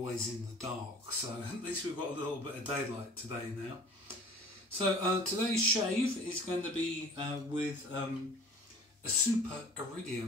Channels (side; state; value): both; normal; correlation 0.45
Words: in the dark, so at least we've got a little bit of daylight today now. So today's shave is going to be with a Super